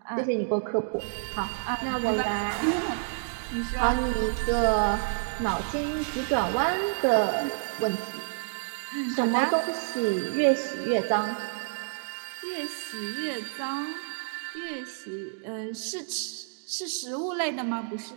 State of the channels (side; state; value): left; silent; digital silence